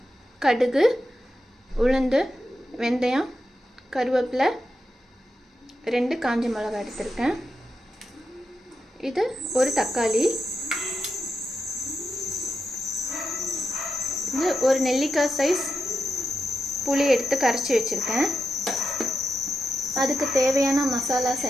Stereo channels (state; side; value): normal; both; correlation 0.87